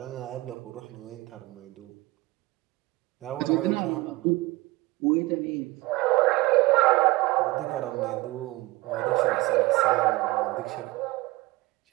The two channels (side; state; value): left; quieter; 21.3 dB